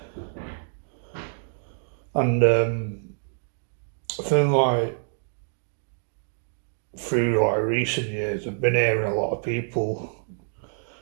and I think through recent years, I've been hearing a lot of people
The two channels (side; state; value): left; silent; 60 dB below the other